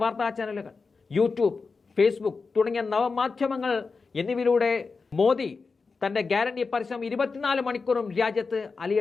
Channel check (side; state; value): right; quieter; 4.5 dB